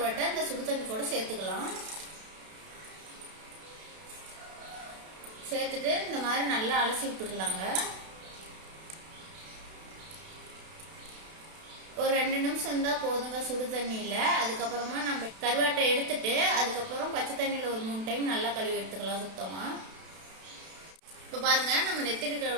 இந்த சுடு தண்ணி கூட சேர்த்துக்கலாம். சேர்த்துட்டு இந்த மாதிரி நல்லா அலசி விட்டுக்கலாங்க. ஒரு 2 நிமிஷம் இருந்தா போதுங்க சுடு தண்ணியில. அதுக்கப்புறமா நம்ம கருவாட்டை எடுத்துட்டு அதுக்கப்புறம் பச்சை தண்ணியில ஒரு 3 டைம் நல்லா கழுவி எடுத்துக்கலாம் சுத்தமா. இப்ப பாருங்க, நம்ம நெத்திலி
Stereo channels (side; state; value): left; late; 32 ms